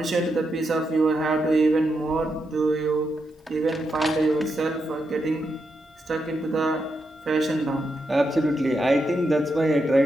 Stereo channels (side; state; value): both; normal; correlation 0.84